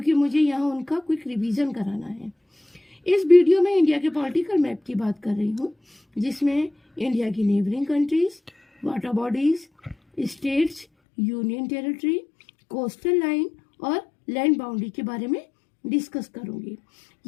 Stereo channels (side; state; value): right; drops out; at 10.9 s